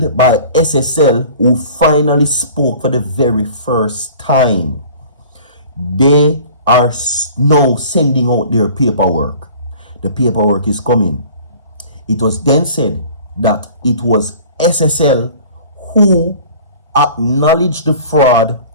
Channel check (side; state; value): both; inverted; correlation -0.46